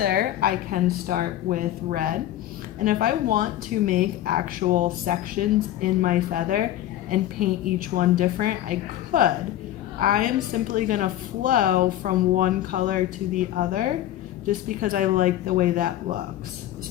I can start with red. And if I want to make actual sections in my feather and paint each one different, I could. I am simply gonna flow from one color to the other just because I like the way that looks.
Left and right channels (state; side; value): quieter; right; 13.0 dB